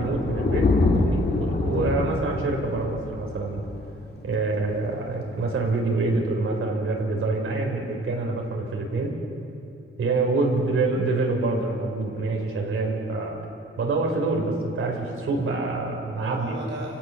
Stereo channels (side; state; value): both; normal; correlation 0.51